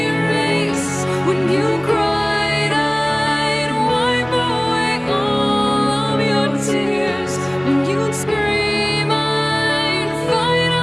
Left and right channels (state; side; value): noise; left; hum, 28 dB below the sound